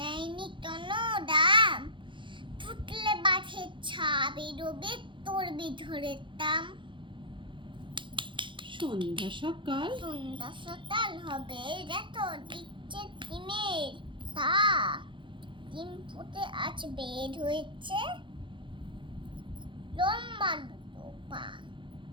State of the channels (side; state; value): left; late; 0.24 ms